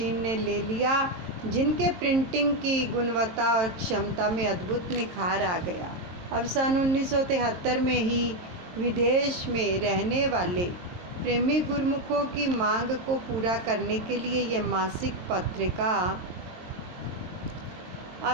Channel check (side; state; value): left; late; 22 ms